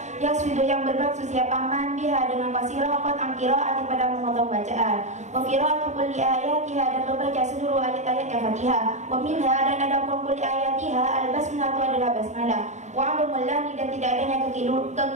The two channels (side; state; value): left; late; 0.34 ms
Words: yaswidu yang bermaksud siapaman biha dengan qasirah qad an qiraati pada memotong bacaan, wa qiraatu kulli ayatiha dan membaca seluruh ayat-ayatnya Fatihah, wa minha dan ada kulli ayatiha al-basmalah adalah basmalah, wa adamul lahni dan tidak adanya